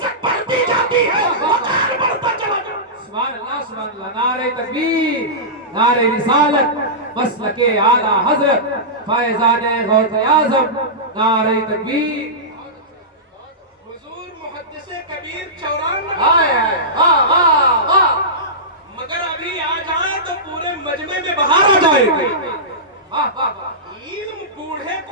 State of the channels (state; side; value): normal; both; correlation -0.17